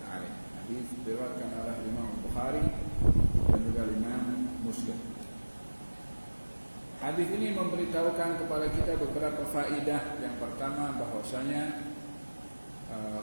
alaih. Hadis diriwayatkan oleh Imam Bukhari dan juga Imam Muslim. Hadis ini memberitahukan kepada kita beberapa faedah. Yang pertama, bahwasanya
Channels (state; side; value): inverted; both; correlation -1.00